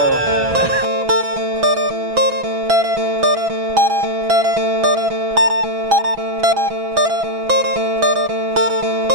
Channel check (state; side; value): late; left; 6.1 ms